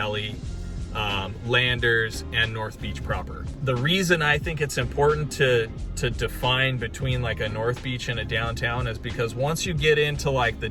Landers, and North Beach proper. The reason I think it's important to define between like a North Beach and a downtown is because once you get into like the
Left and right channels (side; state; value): both; identical; correlation 1.00